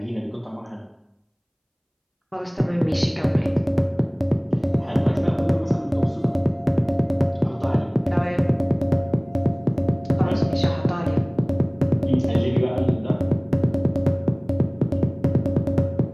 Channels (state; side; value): identical; both; correlation 1.00